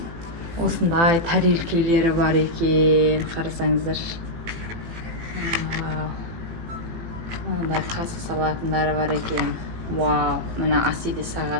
Осындай тарелкелері бар екен. Қарасаңыздар. Мындай қасы салатындары бар екен. Вау, мына Асиде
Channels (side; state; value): left; late; 18 ms